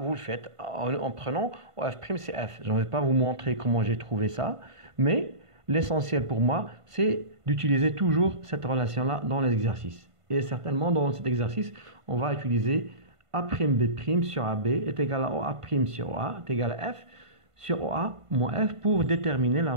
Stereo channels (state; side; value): late; left; 1.5 ms